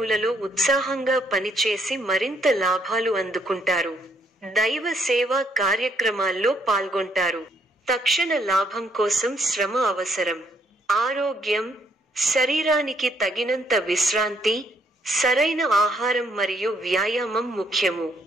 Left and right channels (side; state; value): both; normal; correlation 0.70